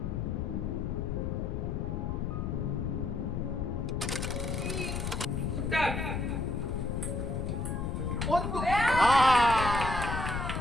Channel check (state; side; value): noise; left; rumble, 2 dB below the sound